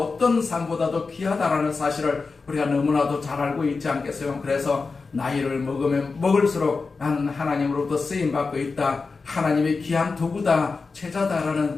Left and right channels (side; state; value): right; quieter; 4.3 dB